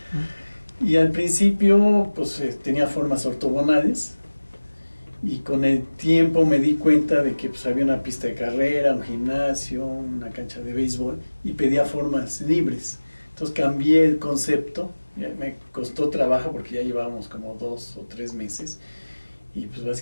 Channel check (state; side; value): inverted; both; correlation -1.00